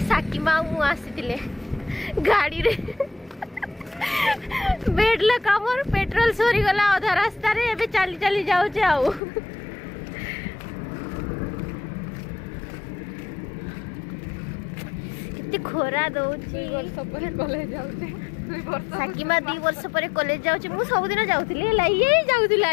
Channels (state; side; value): drops out; right; at 9.2 s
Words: साकी मामू आसीतिले गाड़ी रे बेडला कामर पेट्रोल सोरी गला आधा रास्ता रे। एबे चाली चाली जाउचे आउ खोरा दउची। कॉलेज जाउचे साकीमा 2 वर्ष पर कॉलेज जाउची। मु सब दिन जाउथली ला ये